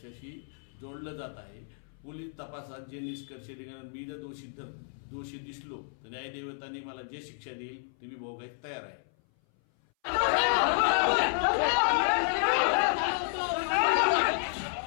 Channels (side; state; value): right; silent; 57 dB below the other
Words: जोडलं जात आहे। पोलीस तपासात जे निष्कर्ष निघाले, मी जर दोषी दिसलो तर न्यायदेवतांनी मला जे शिक्षा देईल ती मी भोगायला तयार आहे।